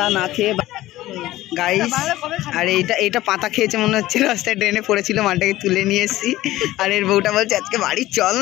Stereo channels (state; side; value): quieter; right; 16.1 dB